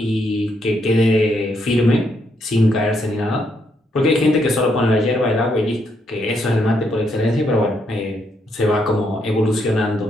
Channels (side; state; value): both; normal; correlation 0.76